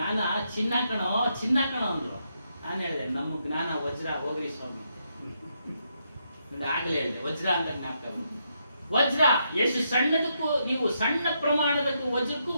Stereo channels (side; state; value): both; inverted; correlation -0.79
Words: ಚಿನ್ನ ಕಣೋ ಅಂದ್ರು. ನಾನು ಹೇಳಿದೆ, ನಮ್ಮ ಜ್ಞಾನ ವಜ್ರ, ಹೋಗ್ರಿ ಸ್ವಾಮಿ. ಆಗಲೇ ಹೇಳಿದೆ, ವಜ್ರ ಅಂತ ಜ್ಞಾಪಕ. ವಜ್ರ ಎಷ್ಟು ಸಣ್ಣದಕ್ಕೂ, ನೀವು ಸಣ್ಣ ಪ್ರಮಾಣದಕ್ಕೂ ವಜ್ರಕ್ಕೂ